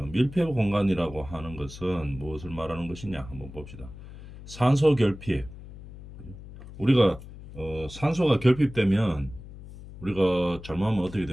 밀폐 공간이라고 하는 것은 무엇을 말하는 것이냐 한번 봅시다. 산소 결핍. 우리가 산소가 결핍되면 우리가 잘못하면 어떻게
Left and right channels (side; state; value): left; noise; hum, 15 dB below the sound